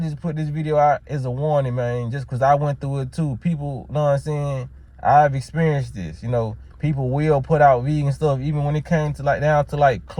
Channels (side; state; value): both; identical; correlation 1.00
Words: put this video out as a warning, man, just because I went through it too. People, know what I'm saying? I've experienced this. You know, people will put out vegan stuff, even when it came to down to